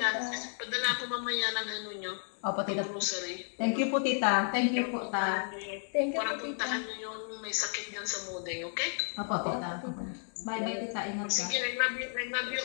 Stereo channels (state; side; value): silent; right; 56 dB below the other